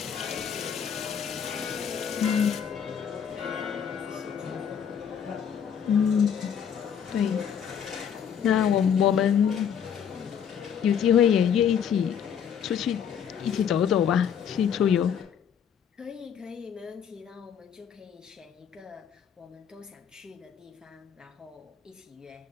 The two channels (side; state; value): right; quieter; 8.1 dB